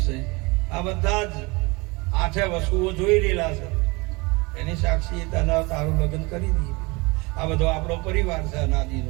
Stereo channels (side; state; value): left; quieter; 25.8 dB